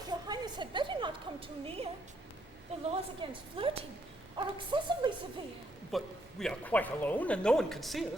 your Highness had better not come too near. The laws against flirting are excessively severe. But we are quite alone, and no one can see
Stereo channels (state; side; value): normal; both; correlation 0.73